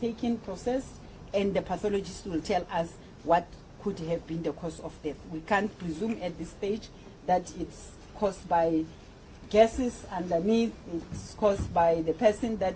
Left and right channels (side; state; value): both; identical; correlation 1.00